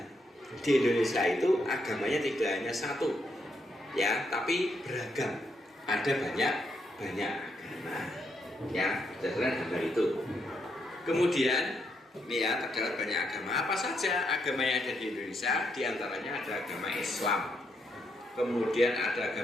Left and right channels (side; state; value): both; normal; correlation 0.78